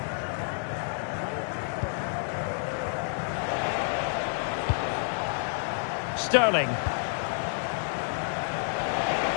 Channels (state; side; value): silent; right; 58 dB below the other